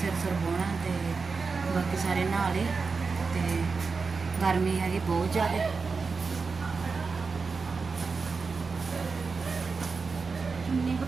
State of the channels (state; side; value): quieter; left; 4.7 dB